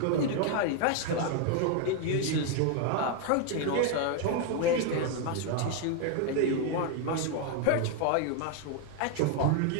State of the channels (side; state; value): both; different; correlation 0.01